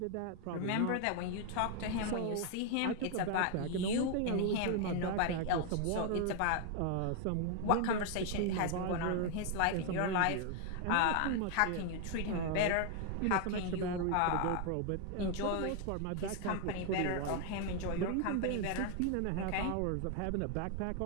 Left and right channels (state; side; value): different; both; correlation 0.00